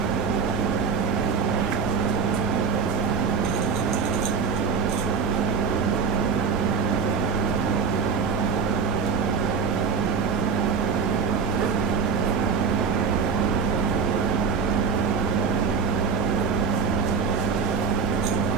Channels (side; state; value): left; quieter; 5.7 dB